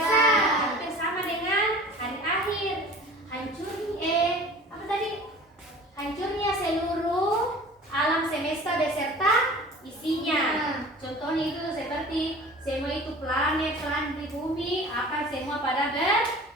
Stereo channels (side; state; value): both; normal; correlation 0.43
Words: hampir sama dengan hari akhir. Hancurnya seluruh alam semesta beserta isinya. Contohnya itu seperti semua itu planet di bumi akan semua pada